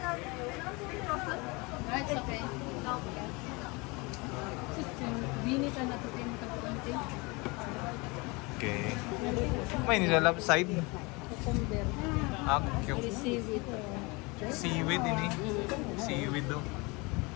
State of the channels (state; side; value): quieter; right; 26.6 dB